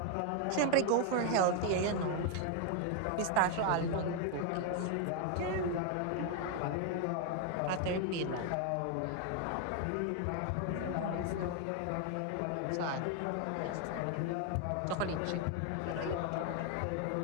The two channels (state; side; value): different; both; correlation 0.00